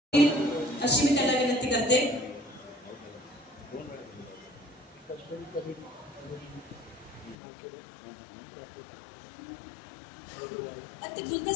अशी मी त्याला विनंती करते. ते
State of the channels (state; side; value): drops out; right; at 7.4 s